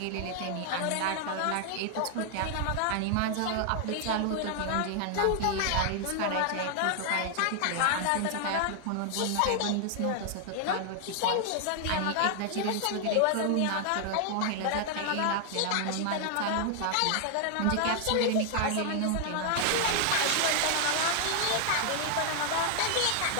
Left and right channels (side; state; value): both; different; correlation 0.00